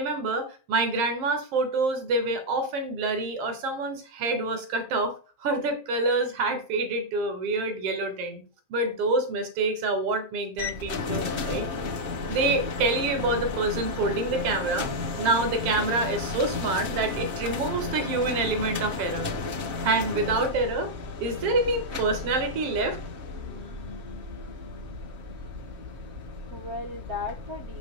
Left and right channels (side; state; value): left; late; 7.6 ms